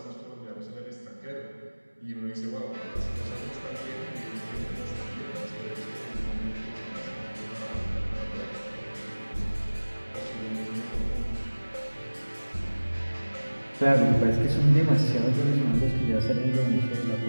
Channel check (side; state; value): both; inverted; correlation -1.00